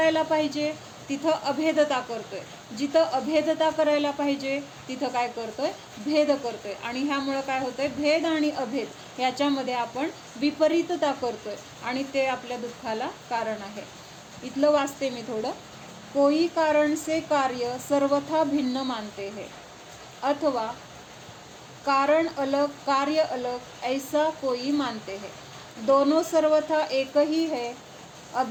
पाहिजे तिथं अभेदता करतोय, जिथं अभेदता करायला पाहिजे तिथं काय करतोय, भेद करतोय. आणि ह्यामुळं काय होतंय, भेद आणि अभेद ह्याच्यामध्ये आपण विपरीतता करतोय आणि ते आपल्या दुःखाला कारण आहे. इथलं वाचते मी थोडं. कोई कारण से कार्य सर्वथा भिन्न मानते हैं, अथवा कारण अलग कार्य अलग ऐसा कोई मानते हैं. दोनों सर्वथा एक ही है,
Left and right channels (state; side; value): identical; both; correlation 1.00